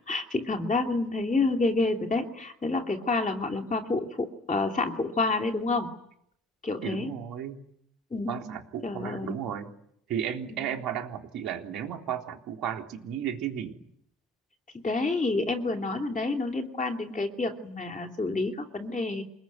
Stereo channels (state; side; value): normal; both; correlation 0.53